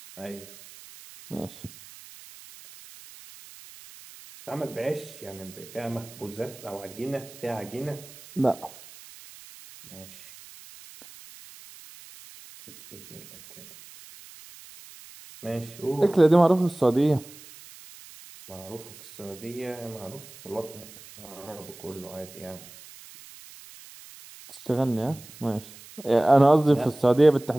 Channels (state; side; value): noise; right; hiss, 19 dB below the sound